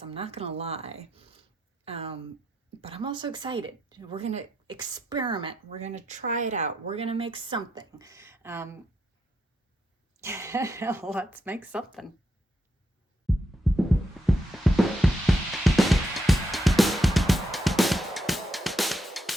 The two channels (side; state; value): both; normal; correlation 0.81